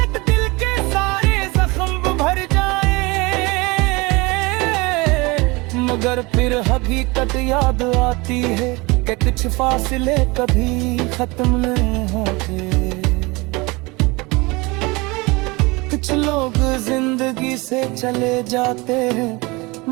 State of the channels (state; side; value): quieter; left; 24.8 dB